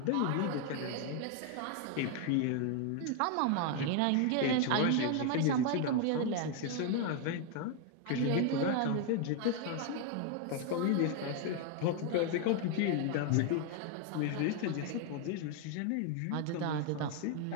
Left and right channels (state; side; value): different; both; correlation 0.01